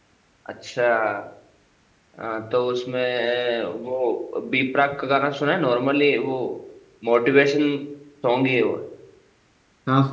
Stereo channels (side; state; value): both; identical; correlation 1.00